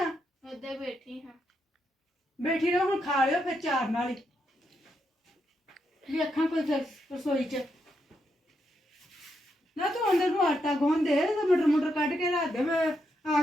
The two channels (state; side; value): normal; both; correlation 0.81